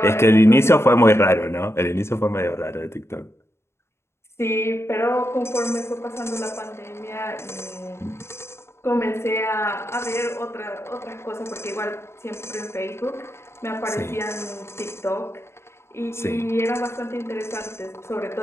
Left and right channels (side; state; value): right; late; 0.13 ms